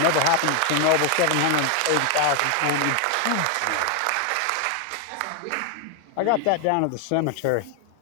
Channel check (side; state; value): both; different; correlation 0.01